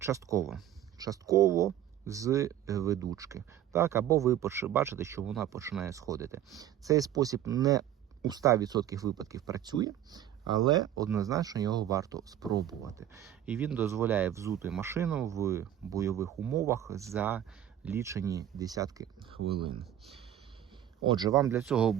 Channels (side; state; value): left; quieter; 11.3 dB